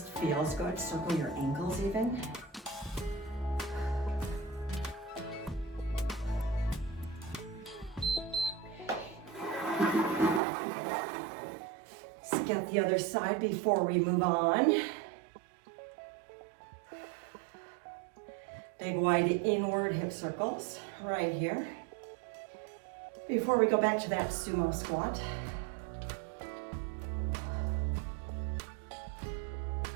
feels good. Circle your ankles even. Let's get the other side before we move on. Big wide inward hip circles right here. Before we go back to that sumo squat.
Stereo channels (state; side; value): drops out; left; at 10.4 s